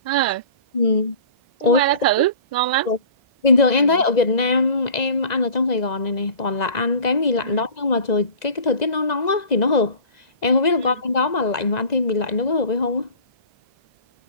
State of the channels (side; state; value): right; late; 2.0 ms